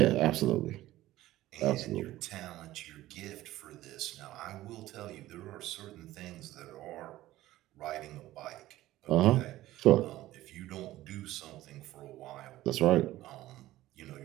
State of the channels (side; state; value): left; quieter; 15.7 dB